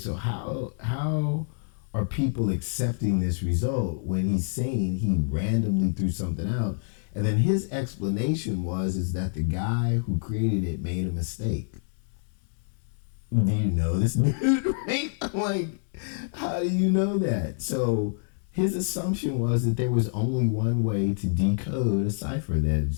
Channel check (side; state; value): right; silent; digital silence